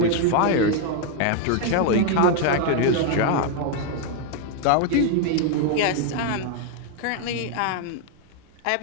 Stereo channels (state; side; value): different; both; correlation 0.01